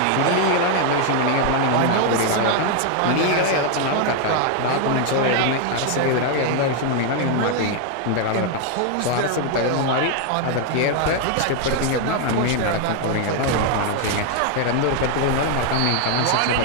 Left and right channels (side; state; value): both; different; correlation 0.00